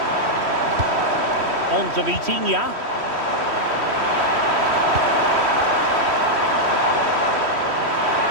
On to Vitinha.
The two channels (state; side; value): late; left; 3.1 ms